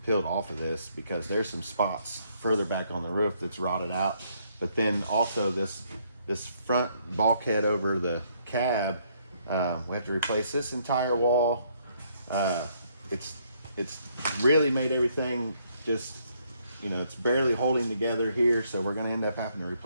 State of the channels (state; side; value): inverted; both; correlation -0.70